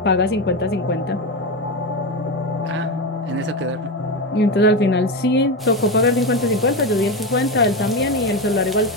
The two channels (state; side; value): normal; both; correlation 0.16